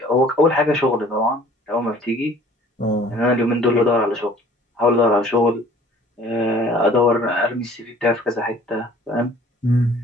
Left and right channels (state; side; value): normal; both; correlation 0.52